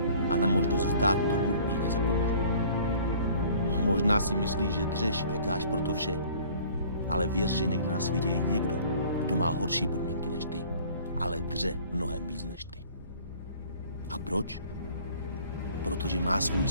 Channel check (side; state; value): both; inverted; correlation -0.51